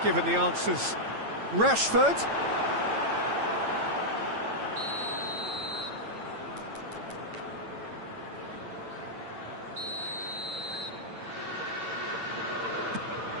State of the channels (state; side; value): late; left; 8.9 ms